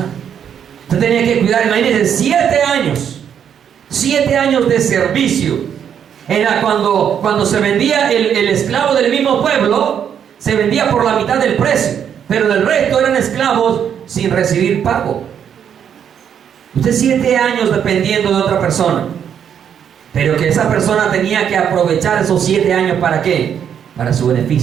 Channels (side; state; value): left; quieter; 8.5 dB